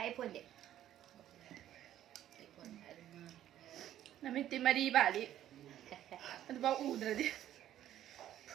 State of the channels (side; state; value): left; quieter; 12.0 dB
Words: 폰데. 나미티 마리 바리. 아주 막 우드라디.